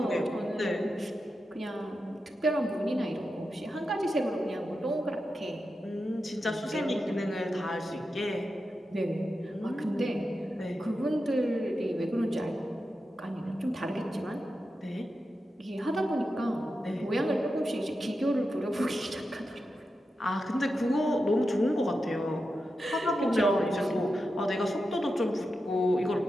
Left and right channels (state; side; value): normal; both; correlation 0.89